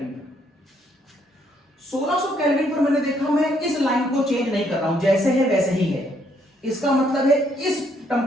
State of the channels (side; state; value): both; normal; correlation 0.70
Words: 1600 केल्विन पर मैंने देखा मैं इस लाइन को चेंज नहीं कर रहा हूं, जैसे है वैसे ही है। इसका मतलब है इस